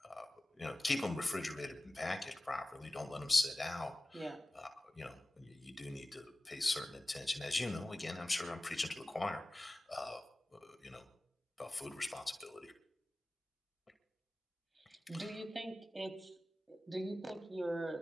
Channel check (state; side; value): normal; both; correlation 0.97